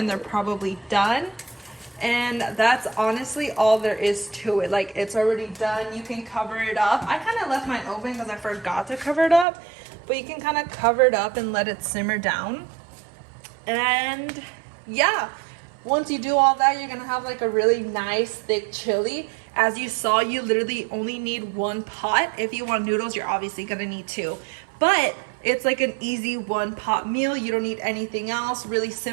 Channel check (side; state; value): left; drops out; at 9.5 s